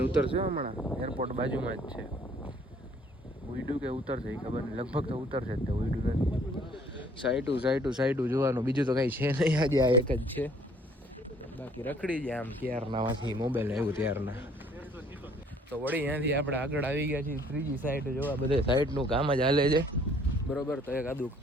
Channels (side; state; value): both; normal; correlation 0.59